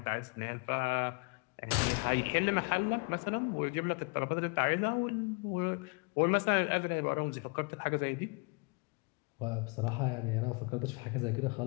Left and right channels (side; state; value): right; quieter; 32.8 dB